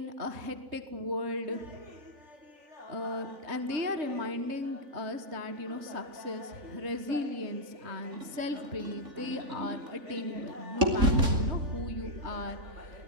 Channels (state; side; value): late; left; 3.7 ms